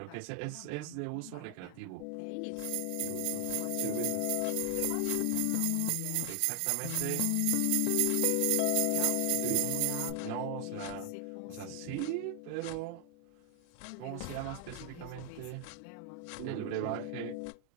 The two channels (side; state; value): both; different; correlation 0.00